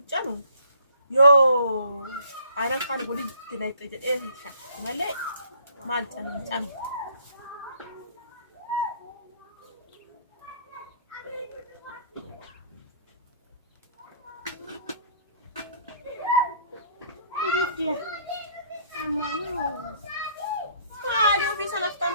يو أنا كان أقول لك تلاقي إيه شيء مالي مال تام كيف مالي وفي سنة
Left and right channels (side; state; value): both; inverted; correlation -0.59